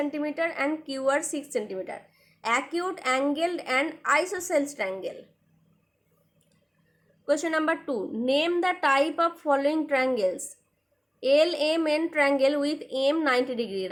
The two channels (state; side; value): identical; both; correlation 1.00